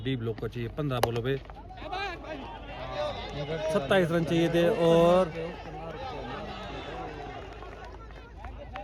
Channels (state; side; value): identical; both; correlation 1.00